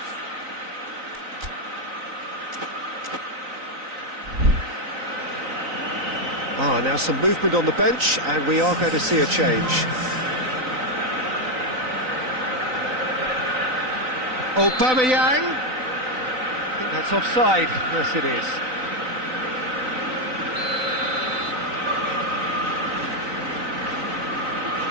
Now some movement on the bench, and we are going to see a change. Aubameyang. I think that's offside. Yes, it is.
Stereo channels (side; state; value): left; late; 3.9 ms